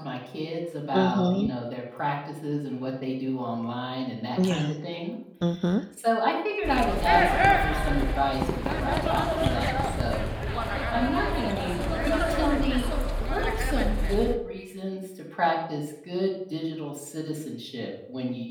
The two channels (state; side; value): identical; both; correlation 1.00